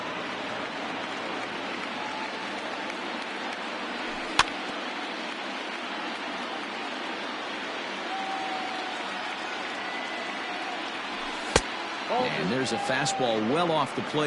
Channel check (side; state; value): both; identical; correlation 1.00